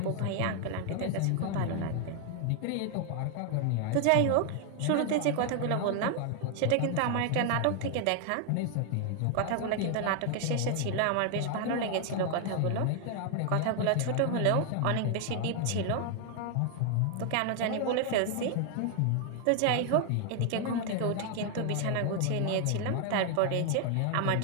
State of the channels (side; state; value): both; different; correlation 0.00